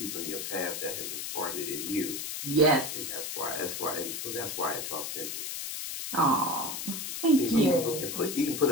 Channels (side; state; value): left; noise; hiss, 5 dB below the sound